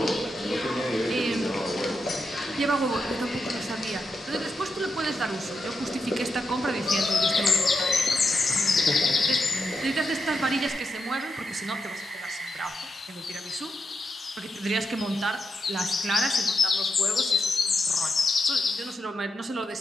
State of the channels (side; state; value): both; normal; correlation 0.85